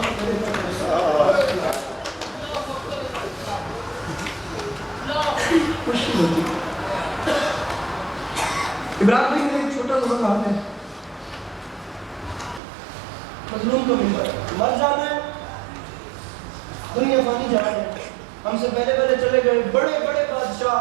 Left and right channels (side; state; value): left; drops out; at 12.6 s